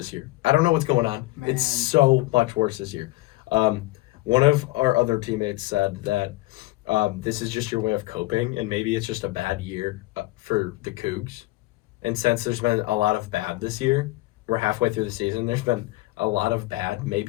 year. I don't know what's going on. Man. It's so much worse this year. One of our other teammates said that this is just your way of coping, and maybe it's just a bad year for the Cougs. And since there's been a lot of bad this year, we're halfway through the season, there's been a lot of bad.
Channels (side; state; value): right; quieter; 19.3 dB